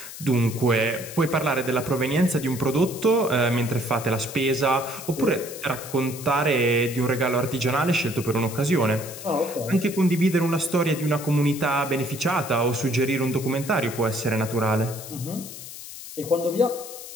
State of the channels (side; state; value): left; noise; hiss, 12 dB below the sound